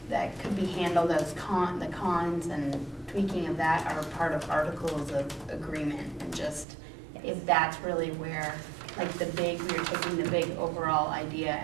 that could be handled as the cons and tweaking of that are part of articles of agreement, and just if that's really where, like we're taking the big overall idea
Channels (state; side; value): drops out; left; at 6.7 s